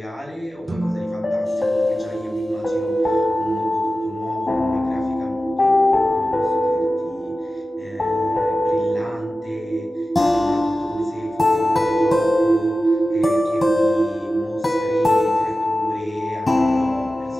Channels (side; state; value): both; normal; correlation 0.94